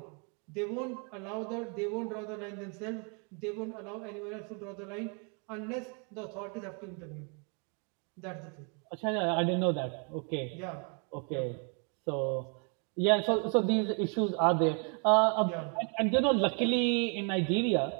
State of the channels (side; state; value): left; quieter; 39.0 dB